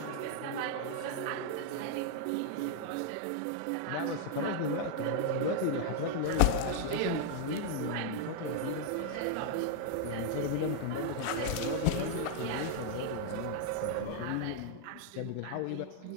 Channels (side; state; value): both; different; correlation 0.00